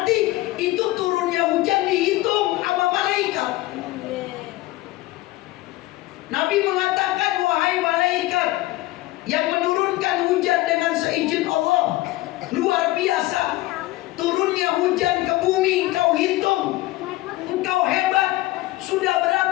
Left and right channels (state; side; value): quieter; right; 18.3 dB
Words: itu turunnya hujan dihitung sama malaikat. Nabi mengatakan, wahai malaikat yang menurunkan hujan dengan seizin Allah, luar biasa. Turunnya hujan ke bumi engkau hitung, engkau hebat. Sudah